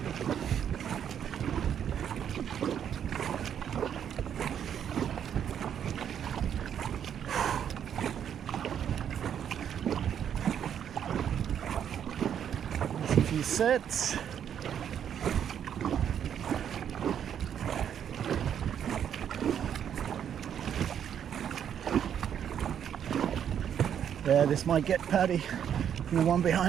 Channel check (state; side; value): quieter; left; 9.0 dB